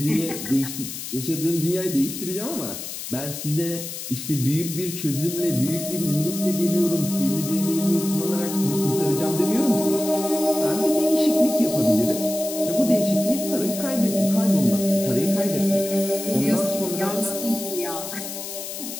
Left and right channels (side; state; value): left; noise; hiss, 8 dB below the sound